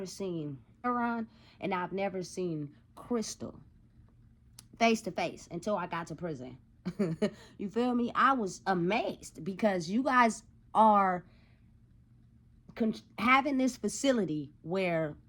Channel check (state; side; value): identical; both; correlation 1.00